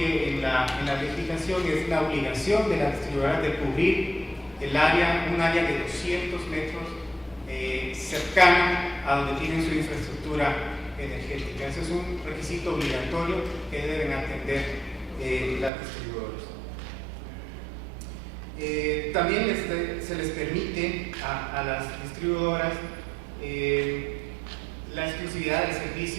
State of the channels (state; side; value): drops out; left; at 15.7 s